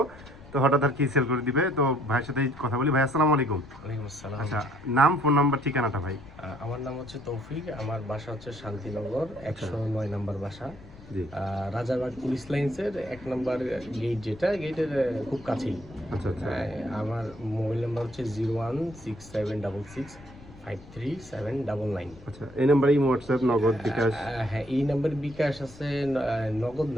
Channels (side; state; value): left; noise; rumble, 20 dB below the sound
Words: তো হঠাৎ আর কি সেল করে দিবে। তো ভাইয়ের সাথে কথা বলি। ভাই আসসালামু আলাইকুম। ওয়ালাইকুম আসসালাম। আচ্ছা, নাম, ফোন নাম্বার, ঠিকানাটা ভাই। আমার নাম হচ্ছে তৌফিক। আমার বাসা হচ্ছে শান্তিনগর 109 নম্বর বাসা। জি। রাজারবাগ পুলিশ লাইন্সের 1 নম্বর গেট, যেটা গেটের খুব কাছেই। আচ্ছা আচ্ছা আমার মোবাইল নাম্বার হচ্ছে 01676653799। আচ্ছা, এই নাম্বারে হোয়াটসঅ্যাপ, নগদ, বিকাশ? হ্যাঁ, এই নাম্বারে বিকাশ আছে, নগদ